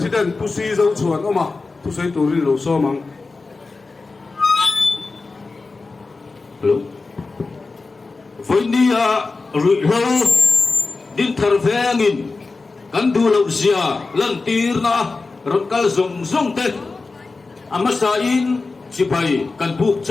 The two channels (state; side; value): quieter; right; 3.9 dB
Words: tu si zo chuan oma tu sei tu ri lo so mang hello với đi rụi lâu din thar vengin kan du lo zia lan tir na rot kal zong zong te amasa in chipai kan buk